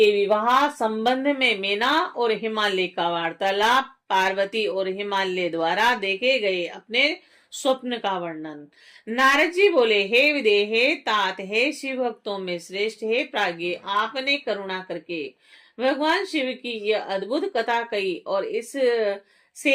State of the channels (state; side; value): identical; both; correlation 1.00